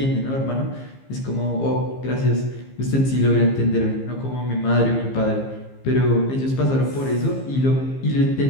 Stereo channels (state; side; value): late; right; 15 ms